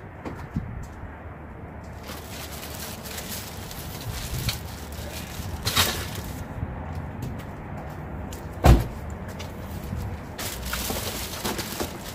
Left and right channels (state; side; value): identical; both; correlation 1.00